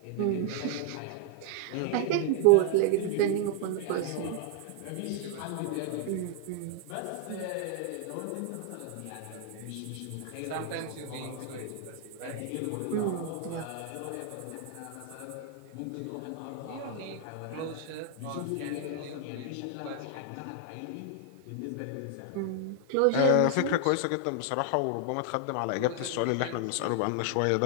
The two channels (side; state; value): both; different; correlation 0.00